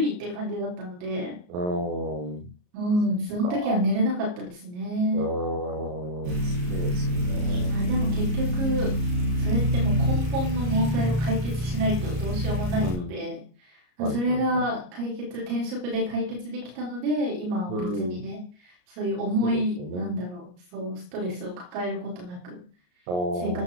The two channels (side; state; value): left; late; 34 ms